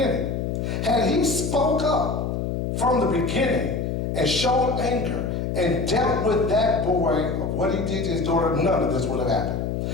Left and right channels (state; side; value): noise; left; hum, 2 dB below the sound